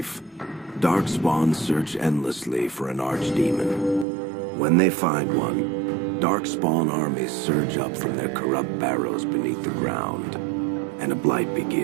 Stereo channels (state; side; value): drops out; left; at 4.0 s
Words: Darkspawn search endlessly for an archdemon. When they find one, Darkspawn armies surge up from their corrupt barrows beneath the ground, and a blight